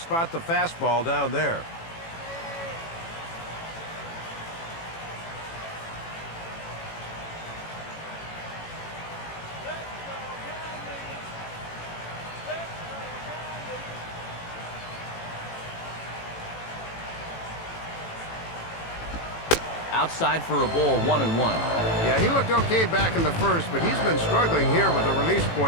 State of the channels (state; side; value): late; right; 18 ms